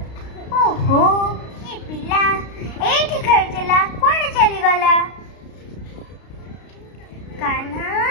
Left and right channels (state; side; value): late; right; 33 ms